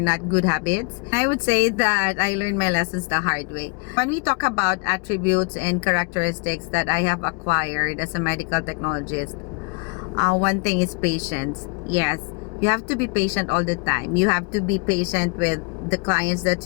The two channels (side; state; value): right; quieter; 34.1 dB